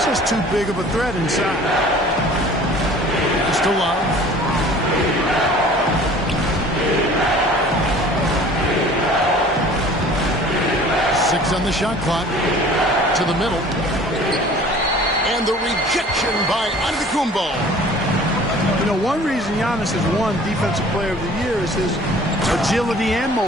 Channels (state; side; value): normal; both; correlation 0.48